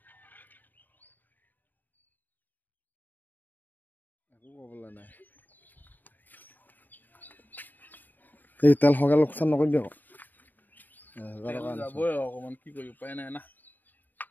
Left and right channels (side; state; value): right; late; 0.088 ms